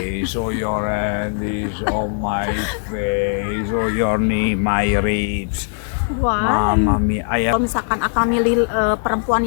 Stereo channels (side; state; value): right; silent; 66 dB below the other